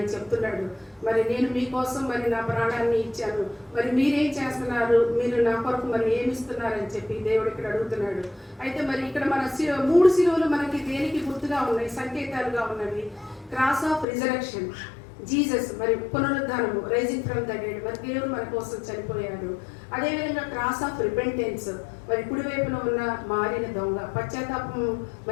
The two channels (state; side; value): drops out; right; at 14.1 s